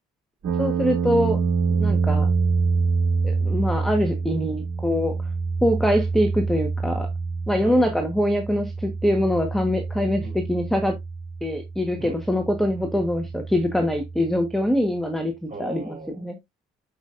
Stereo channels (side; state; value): both; normal; correlation 0.87